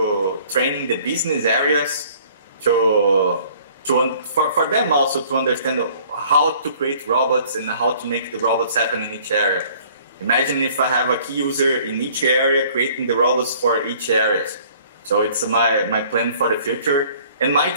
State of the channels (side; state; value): both; inverted; correlation -0.55